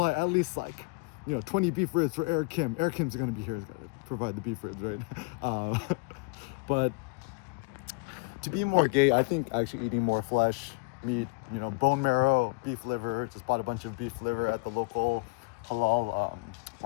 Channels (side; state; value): right; quieter; 30.8 dB